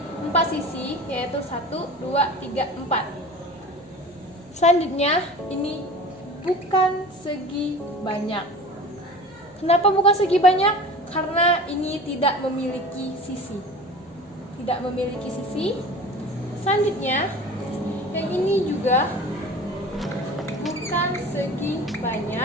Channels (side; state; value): left; noise; hum, 28 dB below the sound